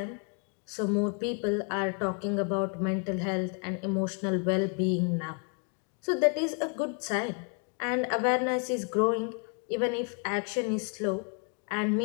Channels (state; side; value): quieter; right; 38.9 dB